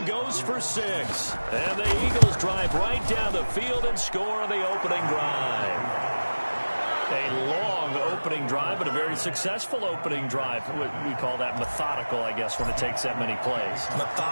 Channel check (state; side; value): inverted; both; correlation -1.00